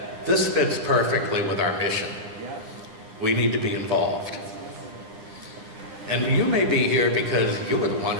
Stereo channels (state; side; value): late; left; 9.8 ms